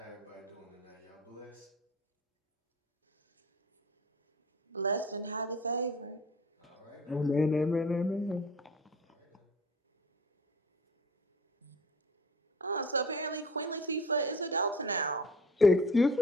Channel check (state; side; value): normal; both; correlation 0.43